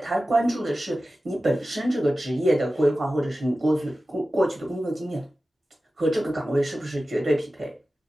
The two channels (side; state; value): both; normal; correlation 0.95